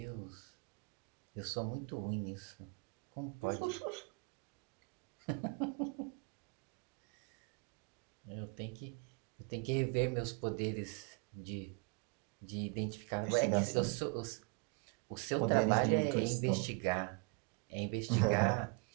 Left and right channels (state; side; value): quieter; left; 29.0 dB